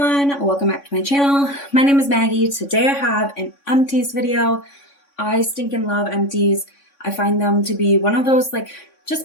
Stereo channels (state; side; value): late; right; 3.6 ms